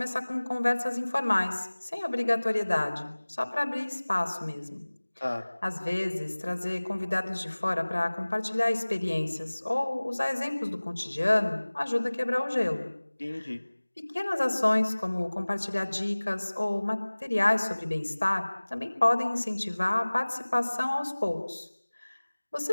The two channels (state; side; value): inverted; both; correlation -1.00